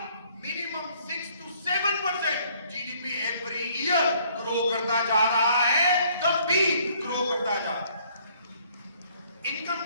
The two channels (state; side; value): inverted; both; correlation -0.62